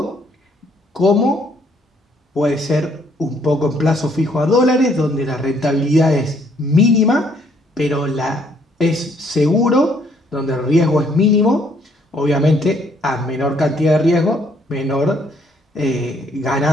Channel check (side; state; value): both; normal; correlation 0.66